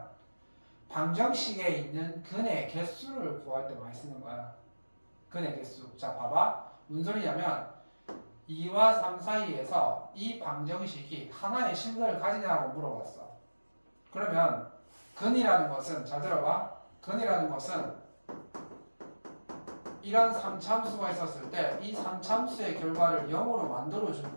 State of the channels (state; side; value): inverted; both; correlation -1.00